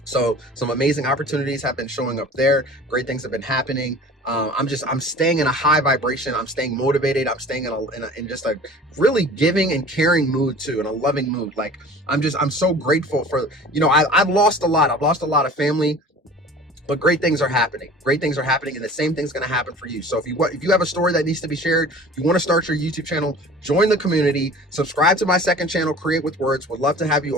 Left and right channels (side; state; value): both; normal; correlation 0.43